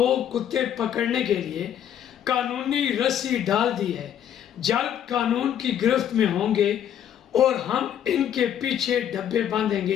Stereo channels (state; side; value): quieter; right; 9.9 dB